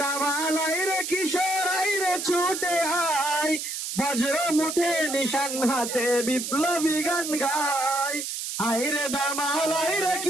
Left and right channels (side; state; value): right; noise; hiss, 5 dB below the sound